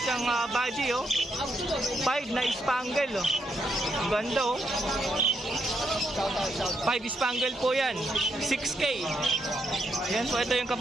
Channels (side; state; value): both; normal; correlation 0.79